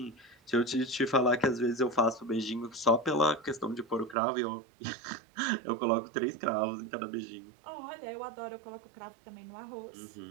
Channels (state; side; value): drops out; left; at 4.2 s